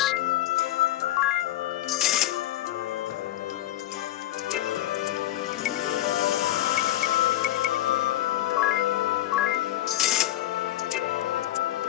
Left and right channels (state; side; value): quieter; right; 14.8 dB